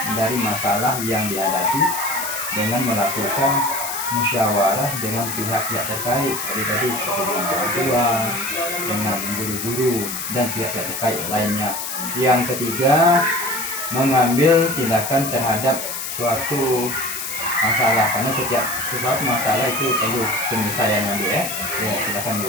dari masalah yang dihadapi dengan melakukan musyawarah dengan pihak-pihak terkait seperti dengan orang tua, dengan guru-guru dan pihak-pihak terkait lainnya. Yang ketiga, mengambil tindakan terhadap suatu masalah, karena setiap sesuatu masalah itu perlu penyelesaiannya Bu ya. Ya silakan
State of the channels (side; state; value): left; noise; hiss, 5 dB below the sound